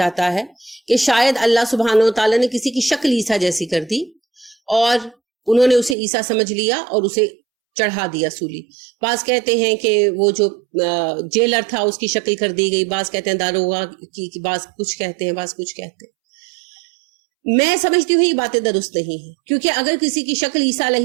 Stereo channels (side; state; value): left; drops out; at 6.0 s